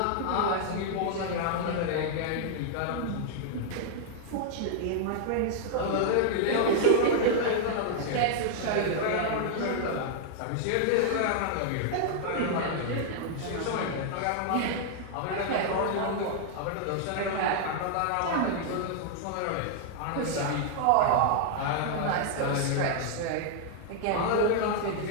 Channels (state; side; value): different; both; correlation -0.01